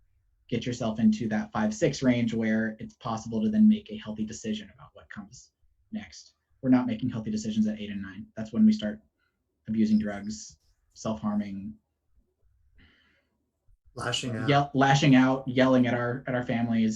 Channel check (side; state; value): both; identical; correlation 1.00